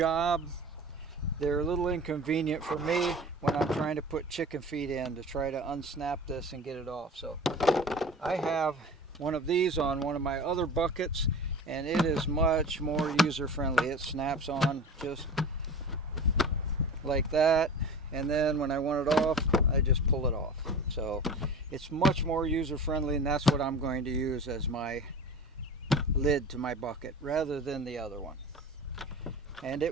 they're a little inconvenient for me when I'm trying to put chicken feed in to try to unsnap this and get it off. So I have one of these on one of my other buckets, and it is much more user-friendly. It snaps on just like that, and then when I want it off, I just pull it off. So it's much more user-friendly, and that's what I'm going to use as my lid to my bucket rather than the other one. And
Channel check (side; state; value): both; normal; correlation 0.36